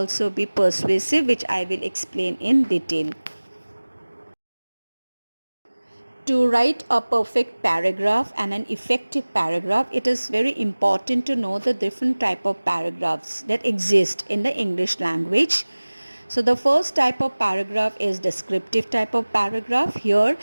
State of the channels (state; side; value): inverted; both; correlation -1.00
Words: be persuasive, which I will explain in detail. To write a perfect paragraph and an effective paragraph, it is very important to know the different type of paragraphs that exist in the English language. So the first type of paragraph is descriptive type of paragraph. Here